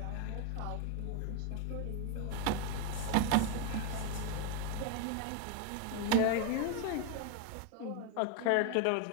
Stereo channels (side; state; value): both; different; correlation 0.01